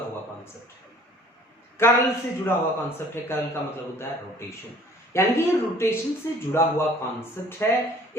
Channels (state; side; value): normal; both; correlation 0.53